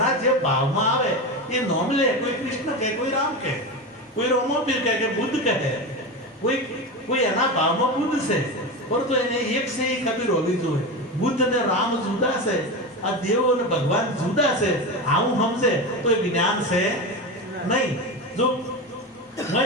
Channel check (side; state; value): both; normal; correlation 0.21